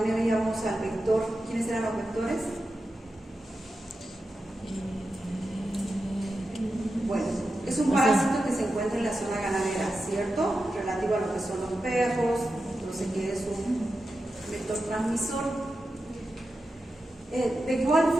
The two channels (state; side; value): normal; both; correlation 0.90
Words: al vector, ¿quiénes eran los vectores? Bueno, es un parásito que se encuentra en la zona ganadera, ¿cierto? Relativo a lo que son los perros, entonces que es un vector transmisor. De igual